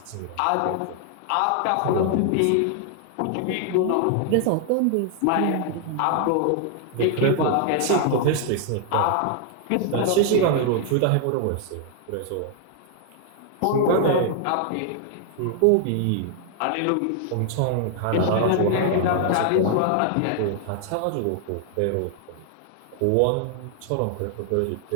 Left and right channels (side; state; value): both; different; correlation 0.00